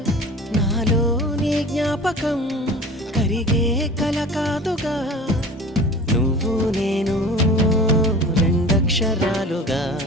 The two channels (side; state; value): both; normal; correlation 0.40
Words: నాలో నీ జ్ఞాపకం కరిగే కల కాదుగా నువ్వు నేను రెండక్షరాలుగా